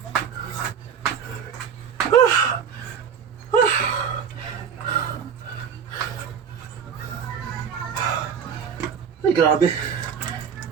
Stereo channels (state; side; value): quieter; left; 7.3 dB